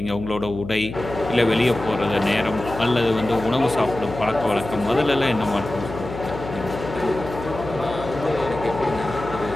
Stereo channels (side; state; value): left; noise; hum, 10 dB below the sound